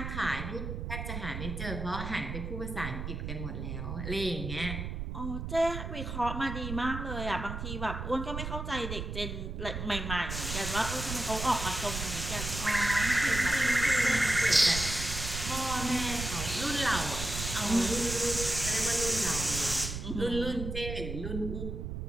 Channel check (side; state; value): right; noise; rumble, 5 dB below the sound